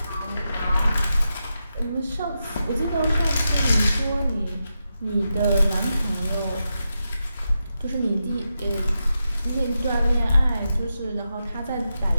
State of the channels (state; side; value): inverted; both; correlation -0.88